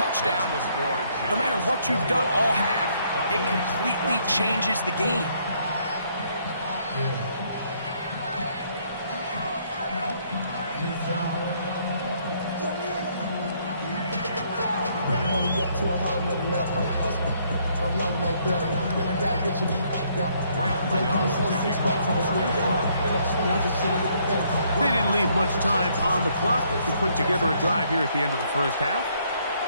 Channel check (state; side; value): inverted; both; correlation -0.68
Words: No matter what you've done all half, it completely changes the game. They didn't leave much time on the clock to put together a drive here at the end of the first half.